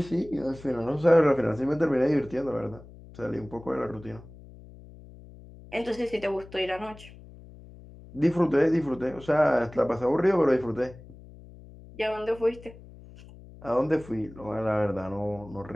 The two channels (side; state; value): left; noise; hum, 19 dB below the sound